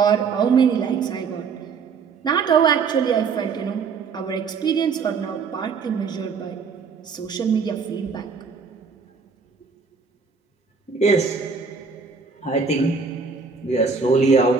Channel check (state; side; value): quieter; left; 5.3 dB